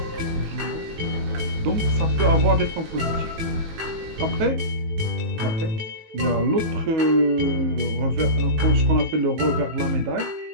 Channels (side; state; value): left; late; 19 ms